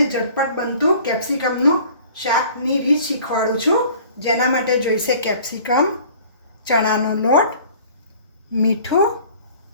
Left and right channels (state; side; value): inverted; both; correlation -0.50